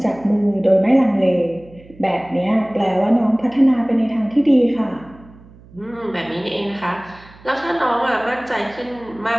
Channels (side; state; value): right; noise; hum, 23 dB below the sound